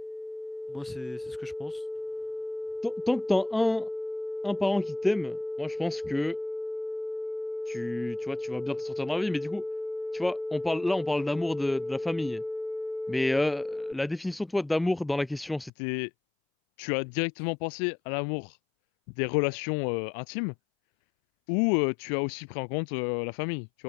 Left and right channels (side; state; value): right; drops out; at 15.7 s